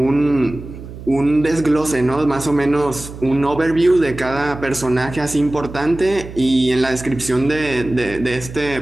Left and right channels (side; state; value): right; noise; hum, 13 dB below the sound